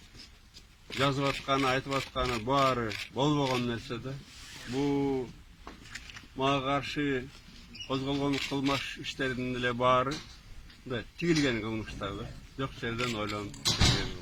жазып атканы, айтып атканы баары болбогон нерсе да. Бул мага каршы козголгон кылмыш иштердин эле баары мындай тигилген кылмыштар да. Жок жерден ойлонуп тигилген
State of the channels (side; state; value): both; identical; correlation 1.00